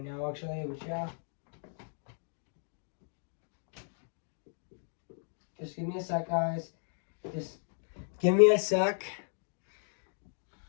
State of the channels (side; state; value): right; silent; digital silence